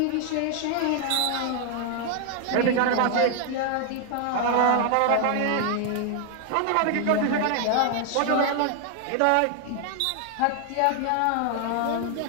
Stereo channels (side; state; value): both; different; correlation 0.00